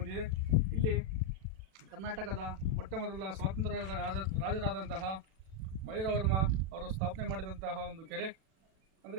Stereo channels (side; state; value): left; late; 37 ms